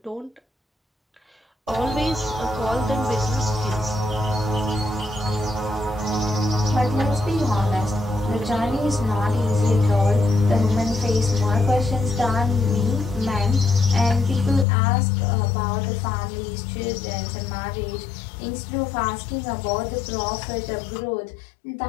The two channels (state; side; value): drops out; right; at 14.7 s